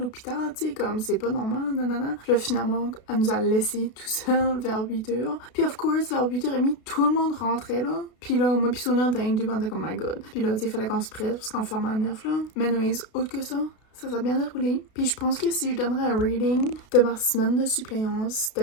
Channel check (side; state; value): right; late; 32 ms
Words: tu sais, comme, c'est pas normal, nanana. Puis là, finalement, elle nous a laissé tout seul vers 8h. Puis, of course, vers 8h30, tout le monde rentrait, là. Puis là, moi pis Sonia, on était on était comme, my god. Puis là, tu sais, il fallait qu'on se presse parce qu'on fermait à 9, là. Mais anyways, autre que ça s'est bien déroulé. Puis je pense que si je donnerais un rating de ma semaine de suppléance, c'était